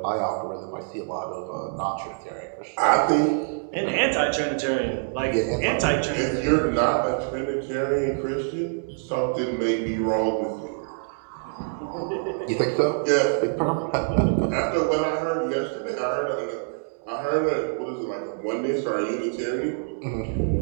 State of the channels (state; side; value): silent; left; digital silence